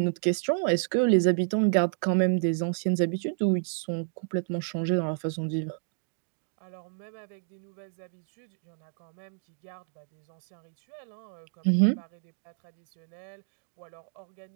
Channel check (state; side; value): silent; left; digital silence